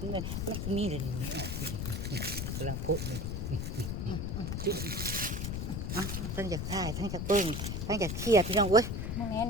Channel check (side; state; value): left; noise; rumble, 2 dB below the sound